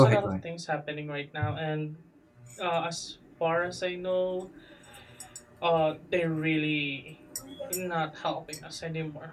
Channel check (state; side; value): identical; both; correlation 1.00